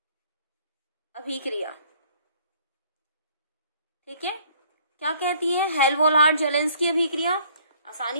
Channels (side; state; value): both; inverted; correlation -0.58